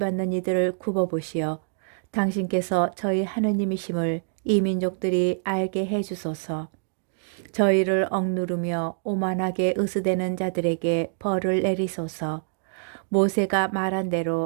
이들을 굽어보시어 당신께서 저희 하느님이심을 이 민족들이 알게 해주소서. 저희를 억누르며 오만하게 으스대는 자들에게 벌을 내리소서. 모세가 말한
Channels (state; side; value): silent; left; digital silence